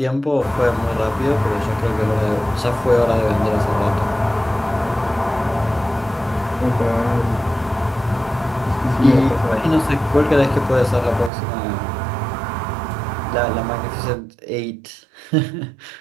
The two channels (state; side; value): drops out; left; at 11.3 s